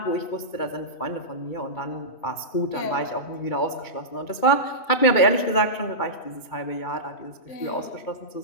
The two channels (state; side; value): late; right; 2.3 ms